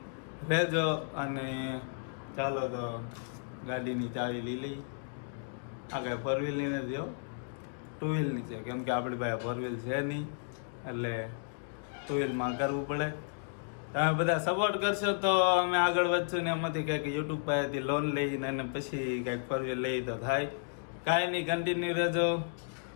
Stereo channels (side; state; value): right; silent; digital silence